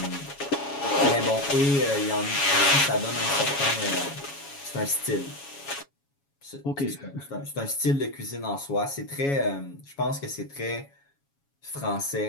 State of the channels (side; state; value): right; late; 7.2 ms